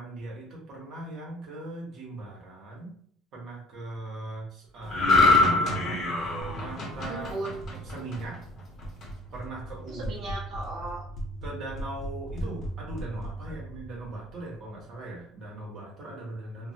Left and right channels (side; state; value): both; normal; correlation 0.54